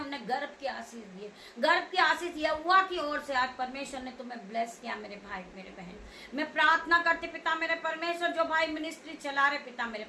गर्भ की आशीष दी, गर्भ की आशीष यहोवा की ओर से आज परमेश्वर ने तुम्हें ब्लेस किया मेरे भाई मेरे बहन। मैं प्रार्थना करती पिता मेरे परमेश्वर, जो भाई मिनिस्ट्री चला रहे पिता मेरे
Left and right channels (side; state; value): both; identical; correlation 1.00